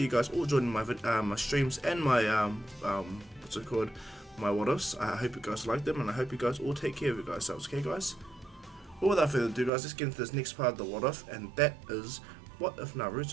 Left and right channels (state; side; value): drops out; left; at 9.7 s